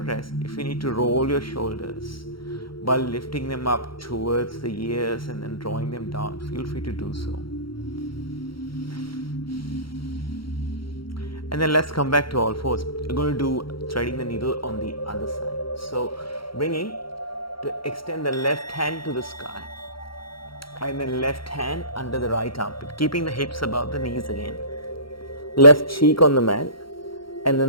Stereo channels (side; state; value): right; late; 0.74 ms